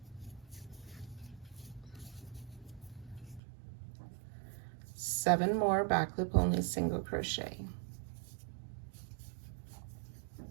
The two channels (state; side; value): drops out; left; at 3.4 s